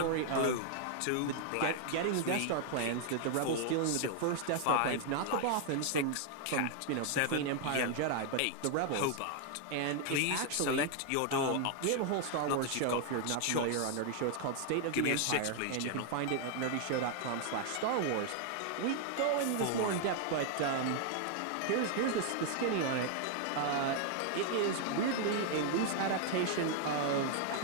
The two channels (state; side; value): different; both; correlation 0.00